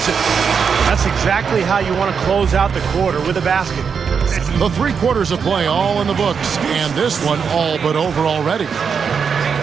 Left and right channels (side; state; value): left; quieter; 6.3 dB